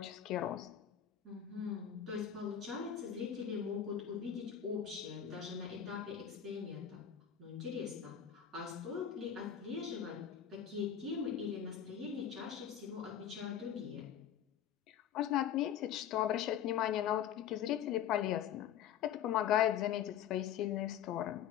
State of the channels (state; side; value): quieter; right; 9.5 dB